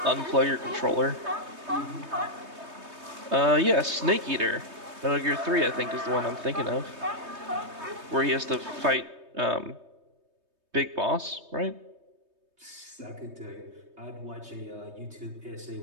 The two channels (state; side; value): late; left; 3.2 ms